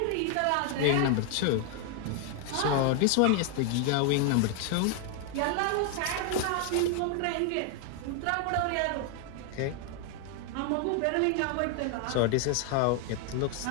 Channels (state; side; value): different; both; correlation 0.00